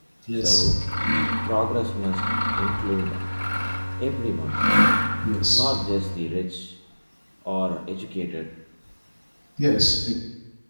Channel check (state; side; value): inverted; both; correlation -1.00